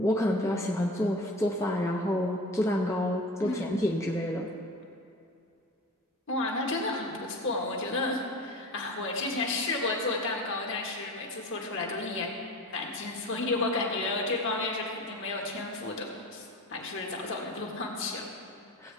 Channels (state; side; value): normal; both; correlation 0.34